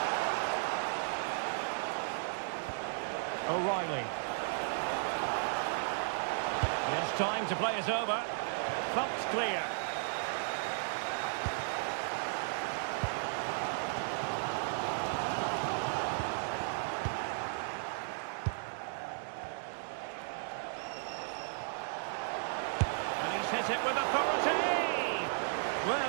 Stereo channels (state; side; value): silent; left; digital silence